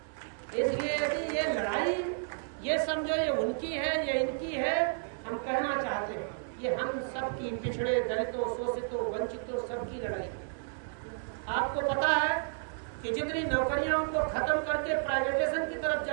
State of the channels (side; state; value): left; silent; 57 dB below the other